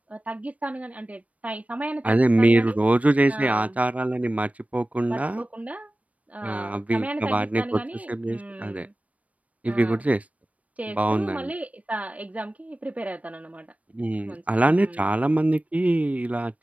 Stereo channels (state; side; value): late; left; 0.067 ms